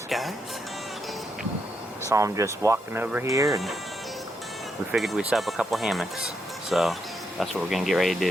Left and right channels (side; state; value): both; normal; correlation 0.80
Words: up, guys? Saw him just walking over here, and we figured we'd set up a couple hammocks. So that's what we're gonna get ready to